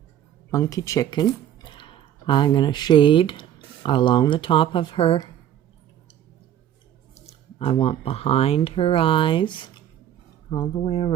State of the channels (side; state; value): left; quieter; 10.8 dB